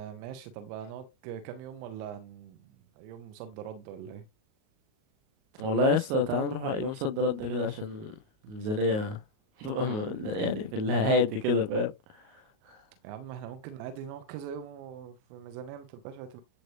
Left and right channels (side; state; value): left; late; 38 ms